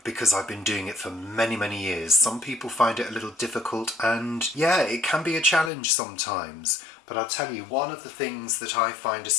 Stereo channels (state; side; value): drops out; right; at 5.7 s